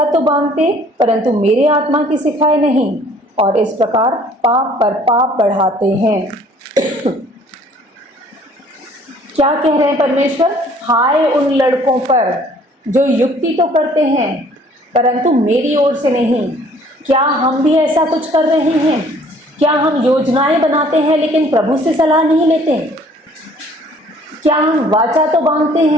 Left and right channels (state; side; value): normal; both; correlation 0.56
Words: तो बांधते परंतु मेरे आत्मा की सिखाए नहीं, और इस प्रकार पाप पर पाप बढ़ाते हैं। क्या कह रहे हैं परमेश्वर? हाय उन लड़कों पर जो युक्ति तो करते हैं परंतु मेरी ओर से नहीं। क्या हम भी ऐसा कुछ कर रहे हैं? क्या हम योजनाएं बनाते हैं लेकिन प्रभु से सलाह नहीं लेते? क्या हम वाचा तो बांधते